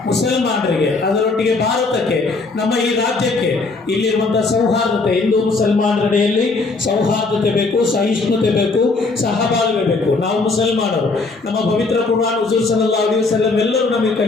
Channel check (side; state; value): right; quieter; 3.8 dB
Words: ಮುಸಲ್ಮಾನರಿಗೆ, ಅದರೊಟ್ಟಿಗೆ ಭಾರತಕ್ಕೆ, ನಮ್ಮ ಈ ರಾಜ್ಯಕ್ಕೆ ಇಲ್ಲಿರುವಂತಹ ಸೌಹಾರ್ದತೆ, ಹಿಂದೂ ಮುಸಲ್ಮಾನರೆಡೆಯಲ್ಲಿ ಸೌಹಾರ್ದತೆ ಬೇಕು, ಸಹಿಷ್ಣುತೆ ಬೇಕು, ಸಹಬಾಳ್ವೆ ಬೇಕು. ನಾವು ಮುಸಲ್ಮಾನರು, ನಮ್ಮ ಪವಿತ್ರ ಕುರ್ಆನ್ ಹುಜೂರ್ ಸಲ್ಲಲ್ಲಾಹು ಅಲೈಹಿ ವಸಲ್ಲಂ ಎಲ್ಲರೂ ನಮಗೆ